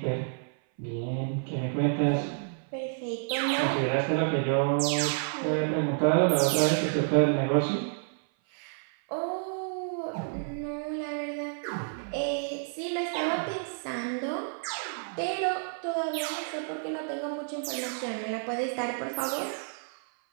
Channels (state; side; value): silent; left; 56 dB below the other